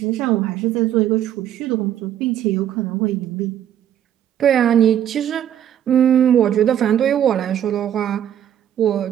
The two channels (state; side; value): quieter; left; 10.5 dB